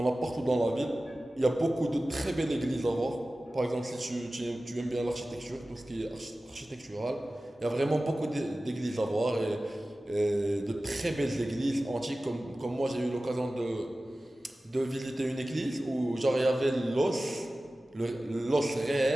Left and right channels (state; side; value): normal; both; correlation 0.96